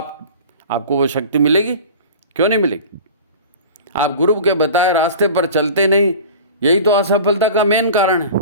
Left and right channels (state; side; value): inverted; both; correlation -0.38